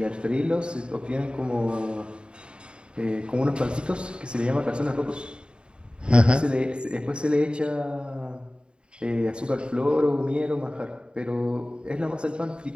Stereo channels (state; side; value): late; left; 0.052 ms